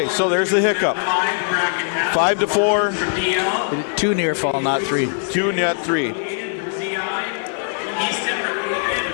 so there's the hiccup. 5-4. 2 near fall, not 3. 2, not 3.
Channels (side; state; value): right; silent; 65 dB below the other